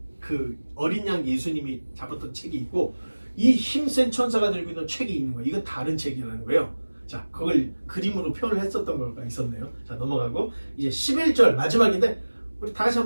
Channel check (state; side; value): inverted; both; correlation -1.00